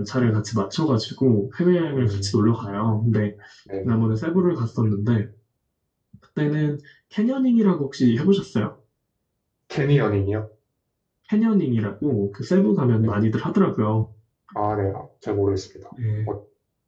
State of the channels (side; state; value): both; identical; correlation 1.00